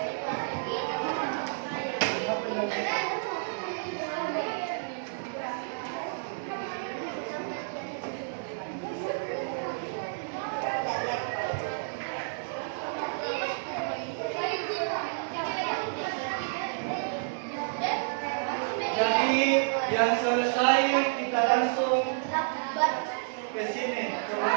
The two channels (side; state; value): left; silent; digital silence